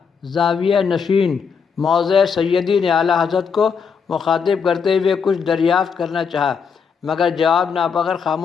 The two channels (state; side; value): quieter; right; 6.2 dB